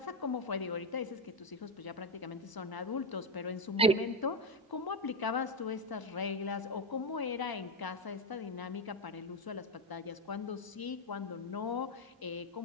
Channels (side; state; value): both; normal; correlation 0.10